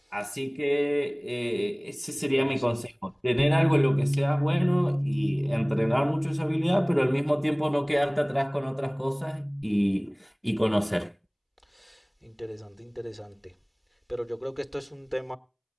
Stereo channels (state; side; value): identical; both; correlation 1.00